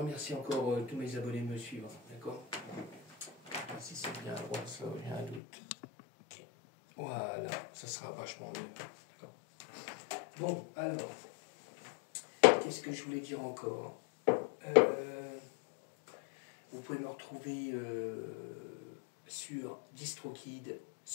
encore tous mes abonnés de me suivre. D'accord. Si c'est bien à droite, ça, j'ai un doute. Okay. Voilà, ça sera vachement mieux. Bon, alors, qu'est-ce que je voulais dire encore? Vous pouvez me retrouver sur DistroKid,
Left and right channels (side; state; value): right; drops out; at 5.4 s